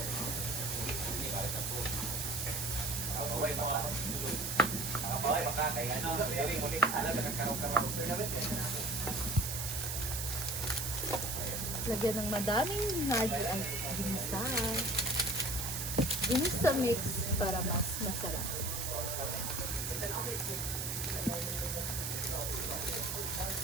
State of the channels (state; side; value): noise; right; hiss, 2 dB below the sound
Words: Lagyan ng madaming hard ang ginisa. Ginisa mix para mas masarap.